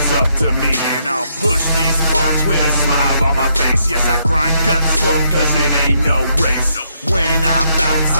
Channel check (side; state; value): both; inverted; correlation -0.75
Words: up to me. And I'll push these parts with a smile on my face. Yes, I grind guts slow, cause it ain't no race. When I bounce,